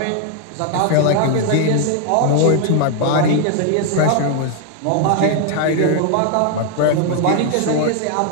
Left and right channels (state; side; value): different; both; correlation 0.00